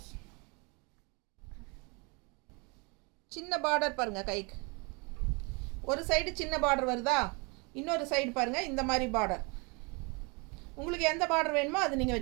சின்ன பார்டர் பாருங்க, கைக்கு ஒரு சைடு சின்ன பார்டர் வருதா, இன்னொரு சைடு பாருங்க இந்த மாதிரி பார்டர். உங்களுக்கு எந்த பார்டர் வேணுமோ அது நீங்கள்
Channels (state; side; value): quieter; left; 30.6 dB